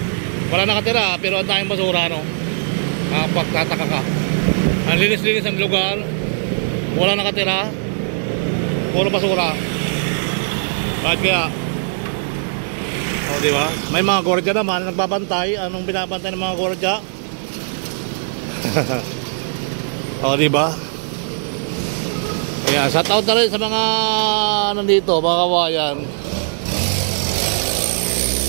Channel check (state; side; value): silent; left; digital silence